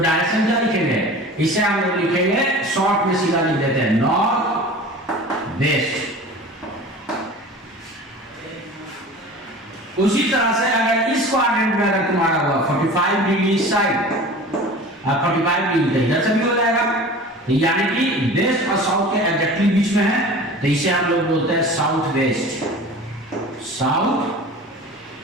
क्या लिखेंगे, इसे हम लोग लिखेंगे शॉर्ट में सीधा लिख देते हैं नॉर्थ वेस्ट। उसी तरह से अगर इस क्वाड्रेंट में अगर तुम्हारा हुआ 45 डिग्री साइड और 45 डिग्री इधर से भी हो जाएगा, तो यानी कि वेस्ट और साउथ के एग्जैक्टली बीच में है, तो इसे हम लोग बोलते हैं साउथ वेस्ट। South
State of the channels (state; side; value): normal; both; correlation 0.39